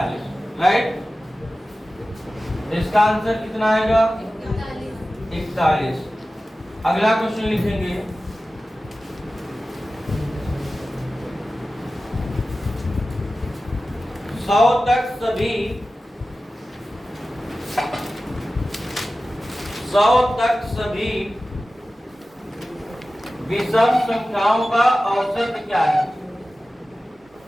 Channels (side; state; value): both; normal; correlation 0.95